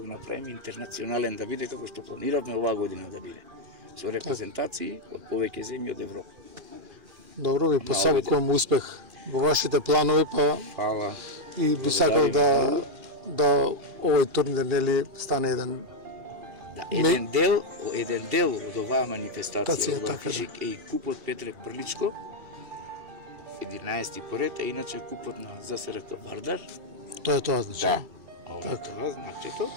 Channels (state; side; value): late; left; 2.4 ms